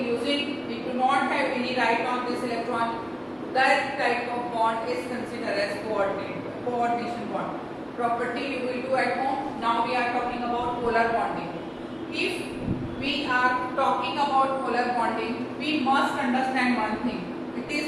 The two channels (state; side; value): identical; both; correlation 1.00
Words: using, it do not have any right on this electron. That type of bond is considered as coordination bond. Property you will do at home. Now we are talking about polar bonding. If we are talking about polar bonding, we must understand one thing. It